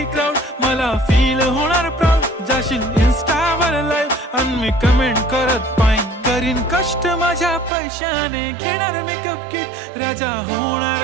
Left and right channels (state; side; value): drops out; left; at 7.7 s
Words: क्राऊड मला फील होणार प्राऊड. जाशील इन्स्टावर लाईव्ह आणि मी कमेंट करत पाईन. करीन कष्ट माझ्या पैशाने घेणार मेकअप किट. राजा